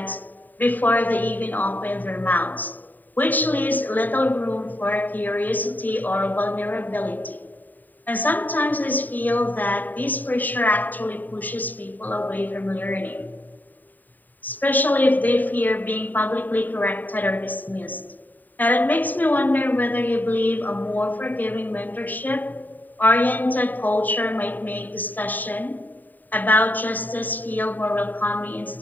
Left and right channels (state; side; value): late; right; 0.087 ms